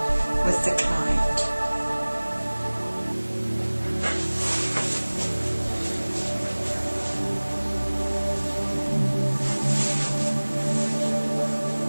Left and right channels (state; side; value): inverted; both; correlation -1.00